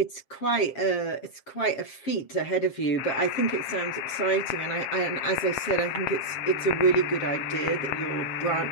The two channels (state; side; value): late; right; 7.4 ms